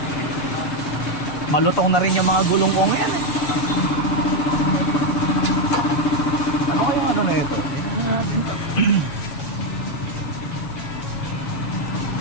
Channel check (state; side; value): late; right; 6.9 ms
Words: Malutong na rin yung mga gulong ko ngayon eh. Ano kaya ano na ito?